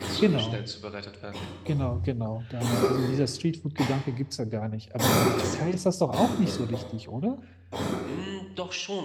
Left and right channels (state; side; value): identical; both; correlation 1.00